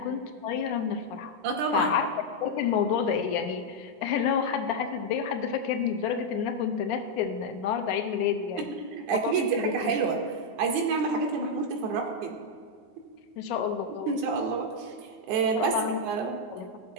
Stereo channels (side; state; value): left; late; 9.7 ms